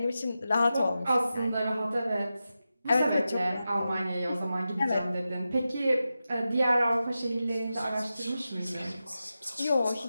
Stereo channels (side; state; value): both; inverted; correlation -0.92